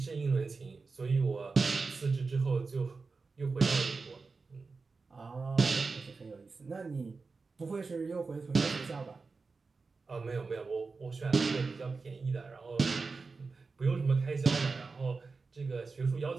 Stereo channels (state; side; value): quieter; left; 4.3 dB